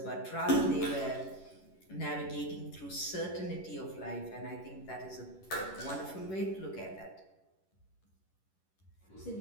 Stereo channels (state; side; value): late; right; 11 ms